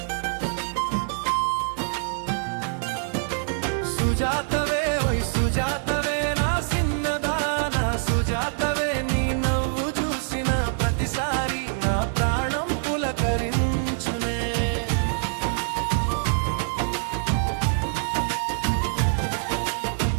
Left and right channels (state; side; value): silent; left; digital silence